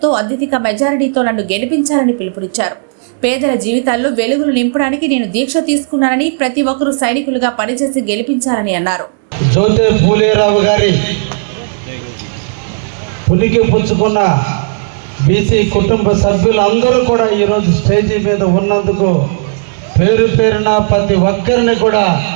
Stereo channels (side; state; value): left; silent; digital silence